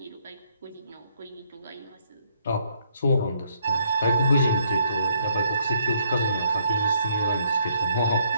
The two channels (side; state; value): both; inverted; correlation -0.70